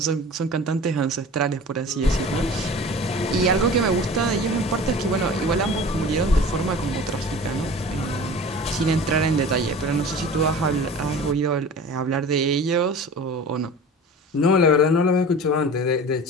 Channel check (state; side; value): normal; both; correlation 0.39